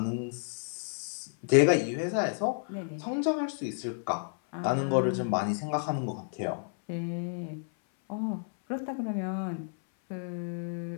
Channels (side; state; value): right; silent; 57 dB below the other